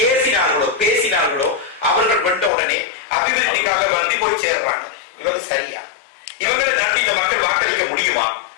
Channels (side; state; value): right; drops out; at 2.5 s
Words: ஏசினார்களோ பேசினார்களோ அவர்கள் வென்ற உடனே அபிவிருத்திக்காக வேண்டி போய் சேர்றாங்க. இவங்க சரியா? இவங்களை நம்பி இந்த மக்கள் வாக்களிக்க முடியுமா?